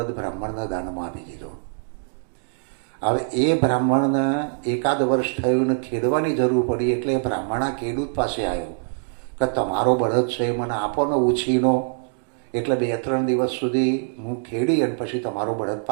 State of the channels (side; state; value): left; silent; digital silence